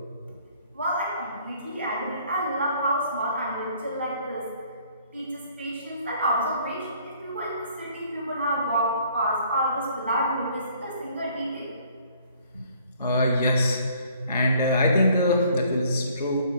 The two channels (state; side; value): inverted; both; correlation -0.60